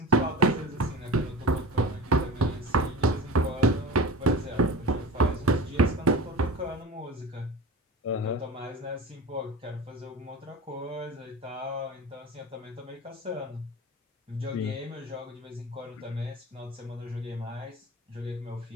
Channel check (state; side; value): normal; both; correlation 0.33